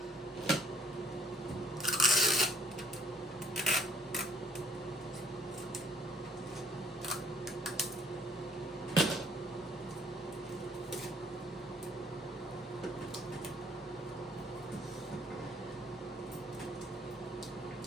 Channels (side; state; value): both; normal; correlation 0.60